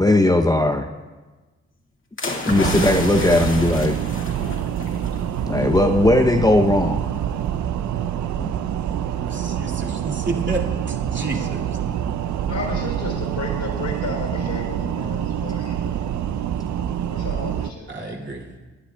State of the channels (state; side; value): normal; both; correlation 0.60